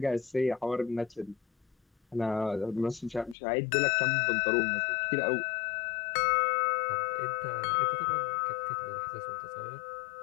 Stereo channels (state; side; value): drops out; right; at 3.4 s